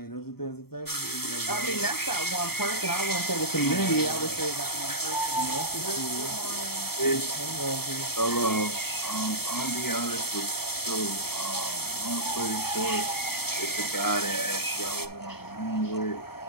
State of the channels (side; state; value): right; late; 0.95 ms